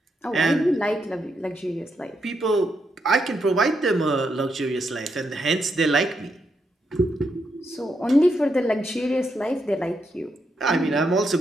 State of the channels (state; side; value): normal; both; correlation 0.81